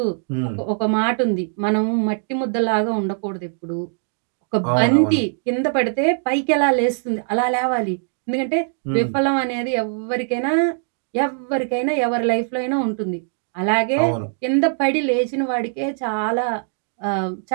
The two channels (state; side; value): silent; left; digital silence